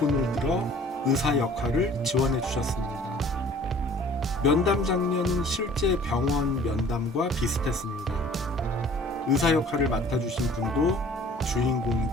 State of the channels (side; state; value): both; normal; correlation 0.51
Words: 들어 의사 역할을 지원해 주셨습니다. 면담 장면은 실제 병원 면담과 비슷했습니다. 의사 역할을 맡아주신 분도